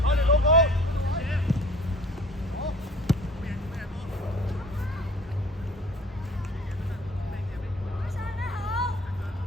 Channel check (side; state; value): both; normal; correlation 0.49